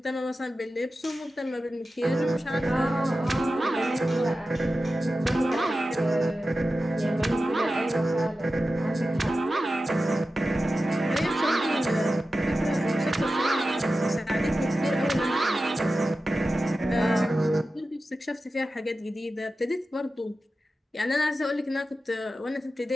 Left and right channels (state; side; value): normal; both; correlation 0.93